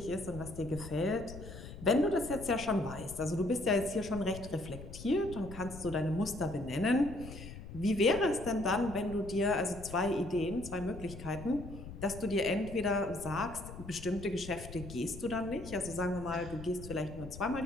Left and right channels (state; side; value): noise; left; rumble, 12 dB below the sound